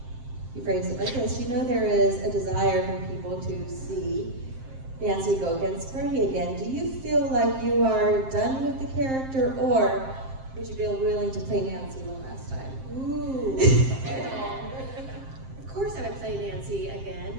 he phrased it like this: you know there is a desire from people to see Nancy go against Freddie again. Do you feel like you are done with the character, or would you be willing to play Nancy one last time? Ooh. Of course I would play Nancy again,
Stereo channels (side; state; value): left; late; 7.6 ms